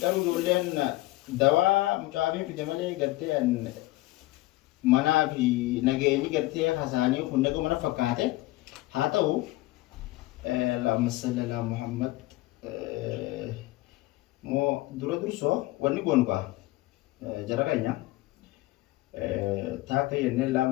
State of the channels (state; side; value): quieter; right; 18.5 dB